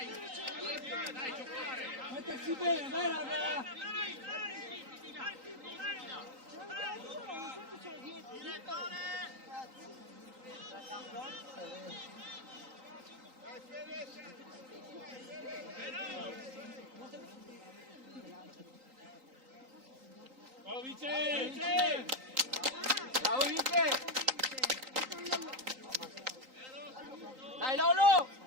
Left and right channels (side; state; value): left; late; 3.8 ms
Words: Dai, giocare! Mettersi bene, dai raga! Bravo Vince! Bravo Vince! Dai Lolo!